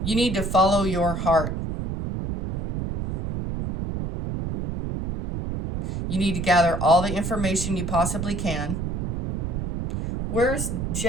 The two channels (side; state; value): right; noise; rumble, 3 dB below the sound